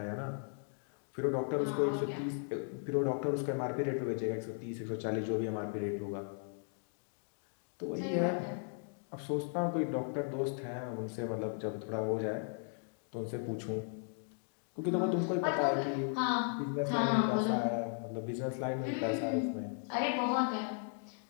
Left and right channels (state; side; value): silent; right; 53 dB below the other